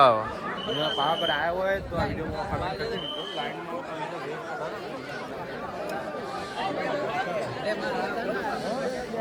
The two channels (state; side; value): identical; both; correlation 1.00